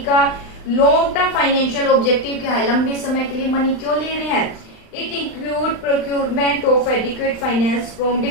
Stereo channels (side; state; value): right; late; 39 ms